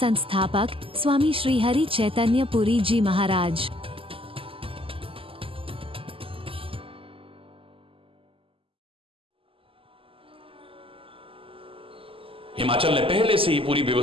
स्वामी श्री हरि चैतन्य पुरी जी महाराज। हिमाचल ने पहले से ही पूरी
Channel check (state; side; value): late; left; 0.26 ms